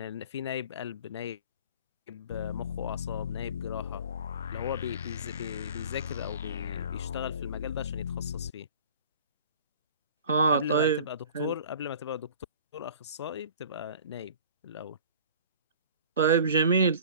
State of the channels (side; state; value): both; inverted; correlation -0.45